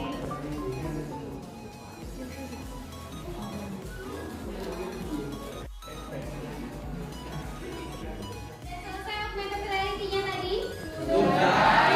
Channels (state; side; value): identical; both; correlation 1.00